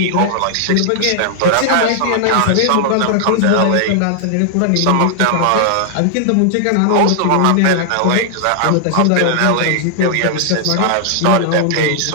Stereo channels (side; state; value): both; different; correlation -0.01